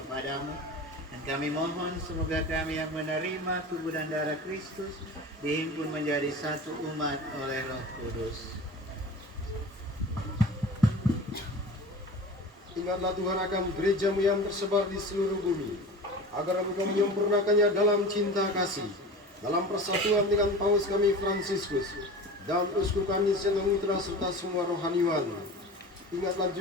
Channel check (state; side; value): normal; both; correlation 0.35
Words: Dan kami mohon semoga kami yang menerima tubuh dan darah Kristus dihimpun menjadi satu umat oleh Roh Kudus. Ingatlah Tuhan akan gereja-Mu yang tersebar di seluruh bumi, agar Engkau menyempurnakannya dalam cinta kasih, dalam persatuan dengan Paus kami Fransiskus dan uskup kami Senang Mitra serta semua rohaniwan. Ingatlah